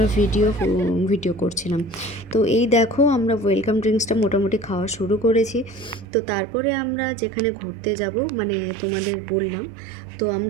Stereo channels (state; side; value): drops out; left; at 6.1 s